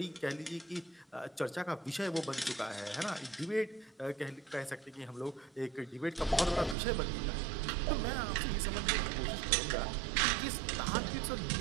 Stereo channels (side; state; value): left; drops out; at 6.8 s